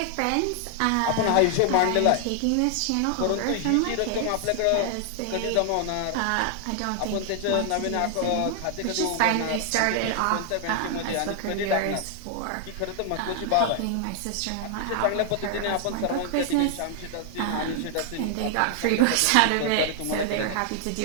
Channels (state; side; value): different; both; correlation 0.00